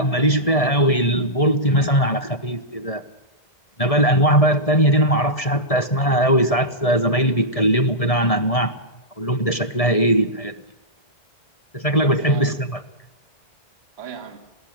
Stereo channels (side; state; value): right; late; 1.7 ms